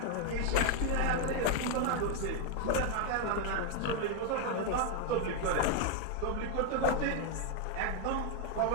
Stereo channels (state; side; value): different; both; correlation 0.01